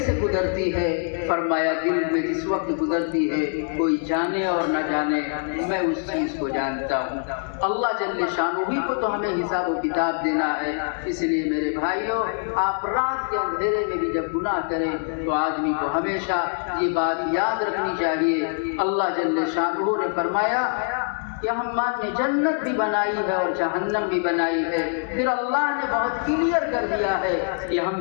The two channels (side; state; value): right; silent; 58 dB below the other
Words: گزرتی ہے۔ فرمایا دل میں جس وقت گزرتی ہے کوئی جانے اور نہ جانے، میں اس چیز کو جانتا ہوں۔ اللہ جل شانہ ہی کو تو ہمیں حساب و کتاب دینا ہے۔ اس لیے میرے بھائیوں، آپ رات کے اندھیرے میں بھی جب گناہ کریں تو آدمی کو ہمیشہ یہ بات یاد رکھنی چاہیے۔ اللہ جل شانہ نے فرمایا کہ ہم نے جنت بھی بنائی ہے اور جہنم بھی بنائی ہے، پھر اللہ نے بہت کلیئر کر دیا ہے کہ